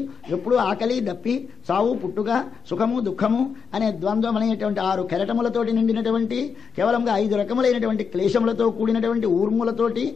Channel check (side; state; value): right; quieter; 6.2 dB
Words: ఎప్పుడూ ఆకలి దప్పి సావు పుట్టుక సుఖము దుఃఖము అనే ద్వంద్వం అనేటువంటి 6 కెరటములతోటి నిండినటువంటి కేవలంగా 5 రకములైనటువంటి క్లేశములతో కూడినటువంటి ఊర్ములతోటి,